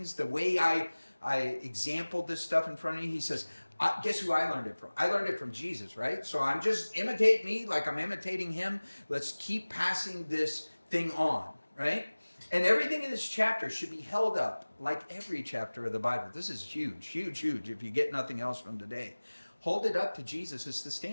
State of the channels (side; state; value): both; inverted; correlation -1.00